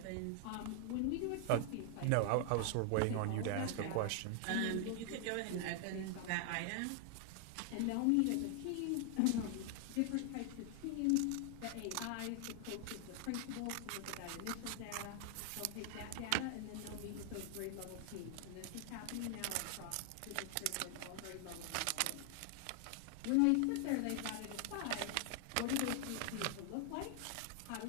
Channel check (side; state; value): both; different; correlation 0.00